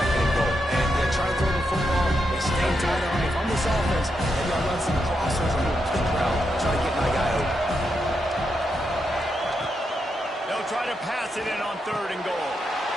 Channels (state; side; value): normal; both; correlation 0.83